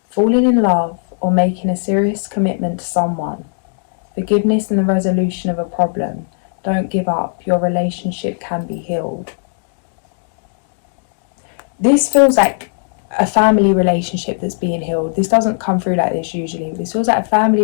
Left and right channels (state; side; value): silent; right; digital silence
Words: Falling in love or making a serious commitment to someone. Forgiveness and the resolution of a problem. Don't give up. Your relationship can be healed. This feels like a family relationship that's being healed. This doesn't come through like this usually. This feels like a